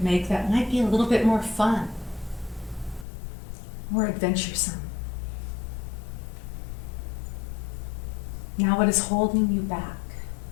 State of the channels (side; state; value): right; drops out; at 3.1 s